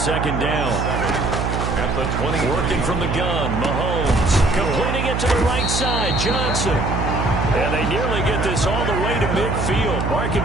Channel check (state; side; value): noise; right; hum, 1 dB below the sound